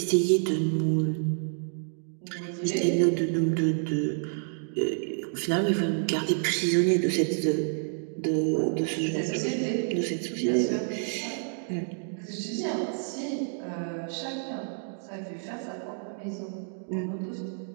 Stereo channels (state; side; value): silent; left; digital silence